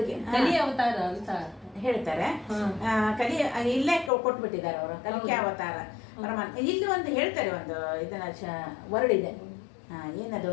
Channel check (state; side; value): drops out; right; at 4.1 s